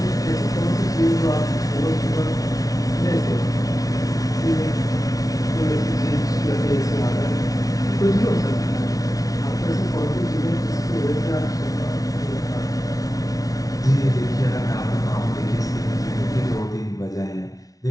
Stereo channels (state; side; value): late; right; 0.18 ms